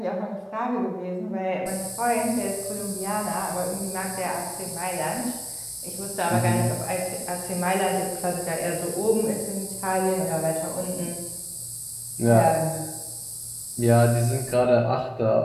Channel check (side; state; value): both; identical; correlation 1.00